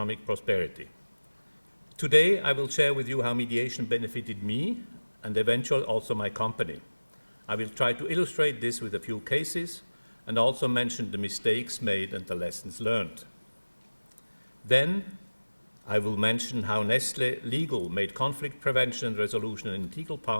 prosperity. Today, I will share with you how mediation benefited me and eventually also my company. I will try to illustrate this with a few cases and also mention the mistakes made and the lessons learned. Then, I will mention how Nestlé Legal made conflict prevention and resolution an integral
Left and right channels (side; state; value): both; inverted; correlation -1.00